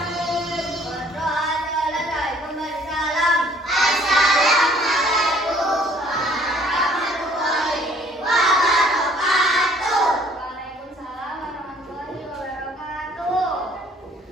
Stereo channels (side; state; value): both; normal; correlation 0.59